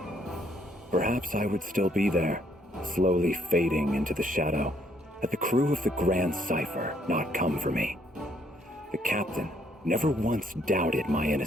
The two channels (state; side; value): normal; both; correlation 0.68